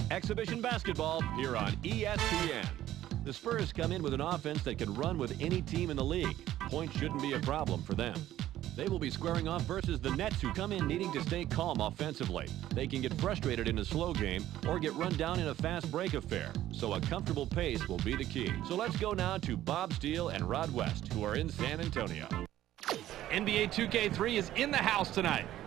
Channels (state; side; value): quieter; left; 13.4 dB